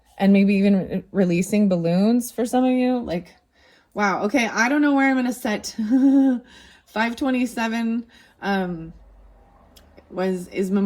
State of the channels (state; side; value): identical; both; correlation 1.00